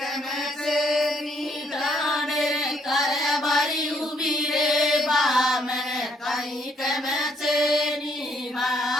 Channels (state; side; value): normal; both; correlation 0.70